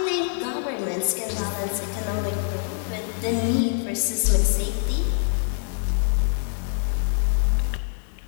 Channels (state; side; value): silent; right; 62 dB below the other